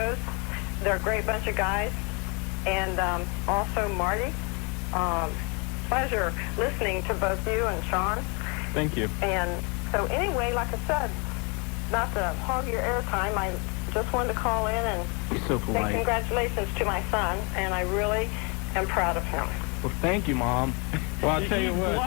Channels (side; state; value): right; quieter; 32.0 dB